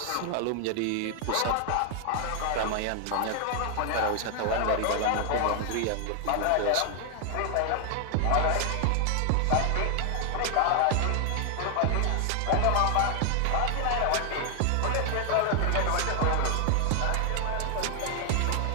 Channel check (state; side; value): different; both; correlation 0.00